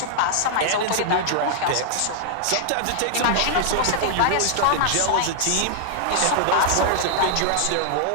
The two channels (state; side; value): different; both; correlation -0.01